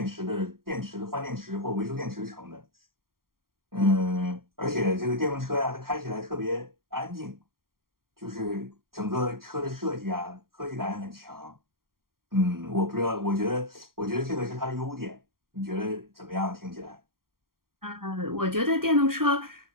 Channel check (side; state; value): left; late; 0.92 ms